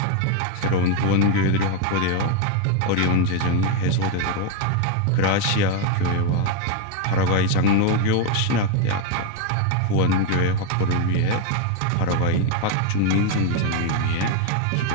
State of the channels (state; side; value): different; both; correlation 0.01